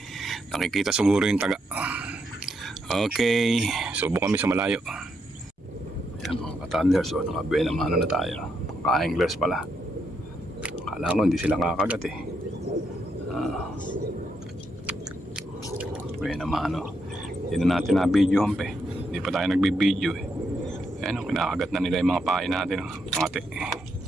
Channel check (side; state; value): both; normal; correlation 0.80